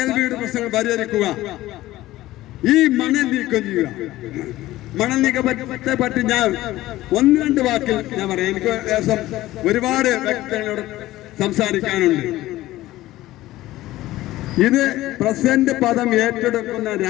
വീട് പ്രശ്നങ്ങൾ പരിഹരിക്കുക, ഈ മണൽ നീക്കം ചെയ്യുക. മണൽ നീക്കത്തെ പറ്റി ഞാൻ 1-2 വാക്കിൽ ഞാൻ പറയാം. എനിക്ക് ഏകദേശം ഒരുപാട് വ്യക്തികളോട് സംസാരിക്കാനുണ്ട്. ഇത് പ്രസിഡന്റ് പദം ഏറ്റെടുക്കുന്ന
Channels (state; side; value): quieter; right; 16.3 dB